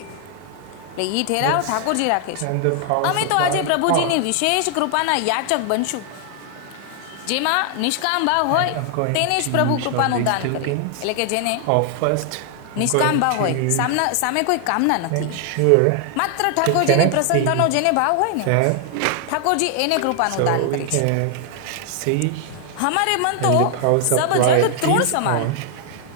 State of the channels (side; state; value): both; different; correlation 0.00